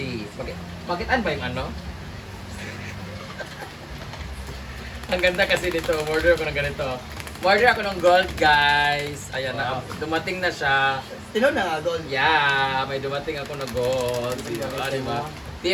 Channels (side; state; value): both; identical; correlation 1.00